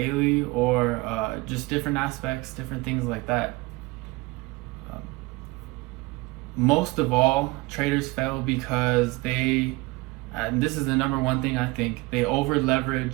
or just different aspects, different things like that. Most of all, traders fail because and this is the number one thing I think, they over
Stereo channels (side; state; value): left; quieter; 22.8 dB